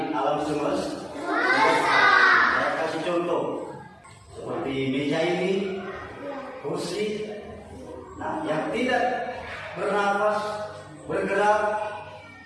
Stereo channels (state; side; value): identical; both; correlation 1.00